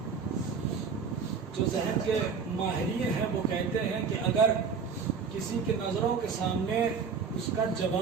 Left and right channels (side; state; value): left; quieter; 5.8 dB